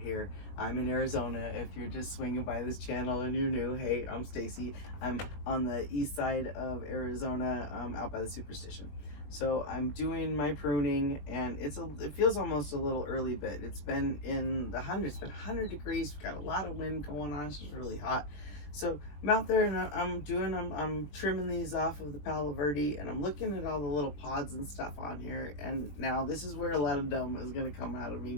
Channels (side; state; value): right; late; 20 ms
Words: I'm in Arizona. If you're just swinging by this channel and you're new, hey, I'm Stacy. I'm on the east side of Arizona, out by the Superstition. So I'm doing my pruning, and it feels almost a little early, but it's been in the hundreds. It's been 100 degrees. We've got a lot of wind going on. It's just really hot. So I'm out there and I'm trimming these off of the Palo Verde, and I'm looking at all the little pods and stuff on here. And now this is where a lot of dumb is gonna come out of me,